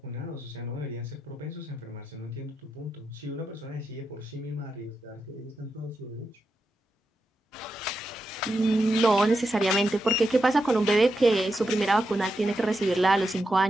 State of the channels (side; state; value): both; normal; correlation 0.87